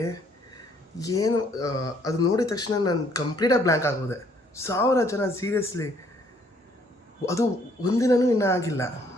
ಏನು, ಅದು ನೋಡಿದ ತಕ್ಷಣ ನಾನು ಕಂಪ್ಲೀಟಾಗಿ ಬ್ಲ್ಯಾಂಕ್ ಆಗೋದೆ. 1000 ಜನ, ಸೀರಿಯಸ್ಲಿ ಅದು ಒಂದಿನವೂ ಇನ್ನೂ ಆಗಿಲ್ಲ.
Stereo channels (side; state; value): both; normal; correlation 0.64